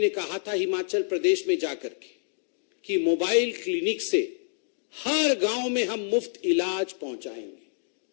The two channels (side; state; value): right; silent; digital silence